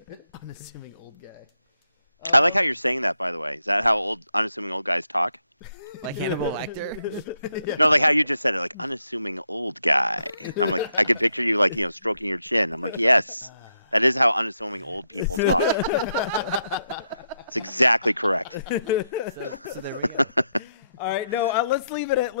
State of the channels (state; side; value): inverted; both; correlation -0.80